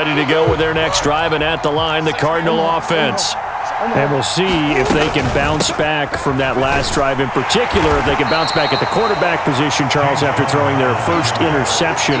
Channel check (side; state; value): both; identical; correlation 1.00